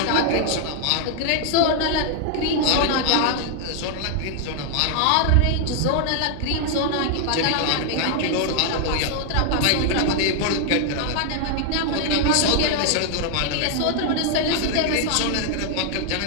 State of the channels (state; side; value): different; both; correlation 0.00